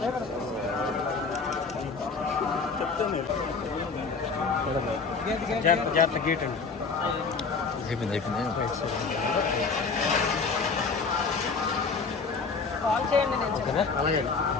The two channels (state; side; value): quieter; right; 4.7 dB